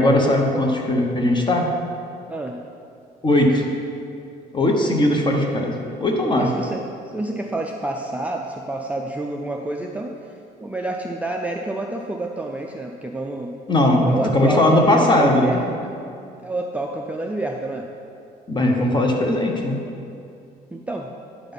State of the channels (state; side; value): normal; both; correlation 0.59